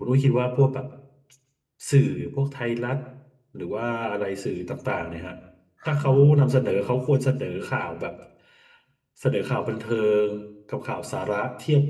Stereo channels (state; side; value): identical; both; correlation 1.00